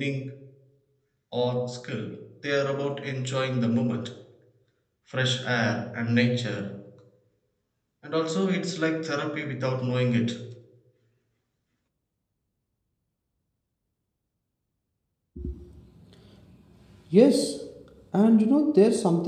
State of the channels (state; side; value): identical; both; correlation 1.00